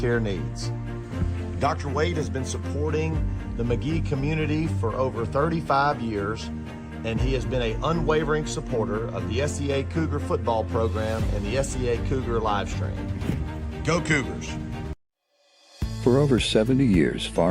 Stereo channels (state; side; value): identical; both; correlation 1.00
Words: needs. Dr. Wade has been supporting the McGee community for over 35 years, and he has been an unwavering supporter of the SEA Cougar football program and the SEA Cougar live stream. Go Cougars! For over 70 years,